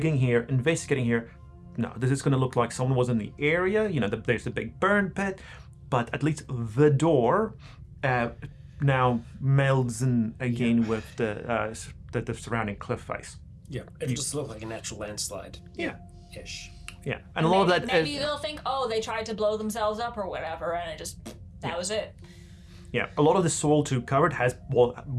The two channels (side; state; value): both; identical; correlation 1.00